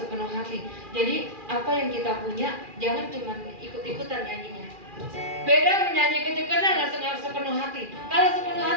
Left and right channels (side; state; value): left; late; 2.4 ms